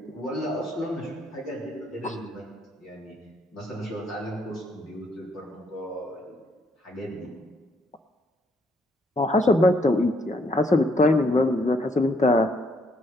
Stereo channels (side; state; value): both; normal; correlation 0.70